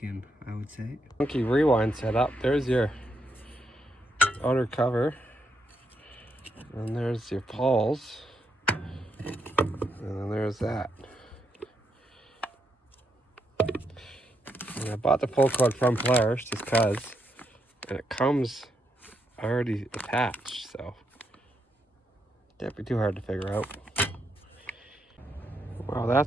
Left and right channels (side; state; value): both; normal; correlation 0.80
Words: I would say. Funky rewind setup. There's your outer cover. And there's your pawls. And then there's that. And I bought the pull cord from Polaris just because. And it comes already attached, so can't be too hard to figure out. Wow,